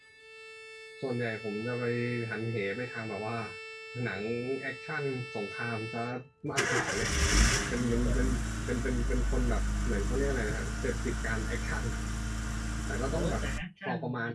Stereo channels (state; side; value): identical; both; correlation 1.00